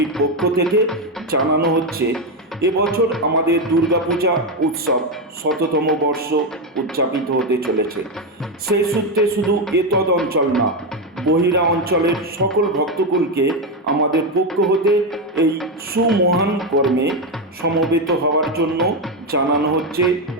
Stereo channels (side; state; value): both; normal; correlation 0.08